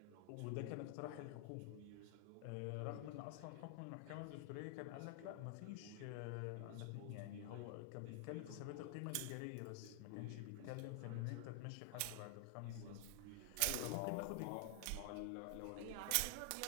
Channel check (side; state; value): both; different; correlation 0.00